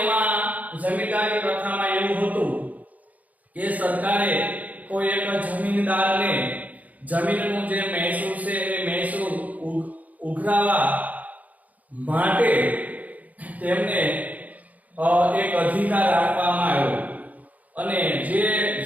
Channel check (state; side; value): late; left; 0.076 ms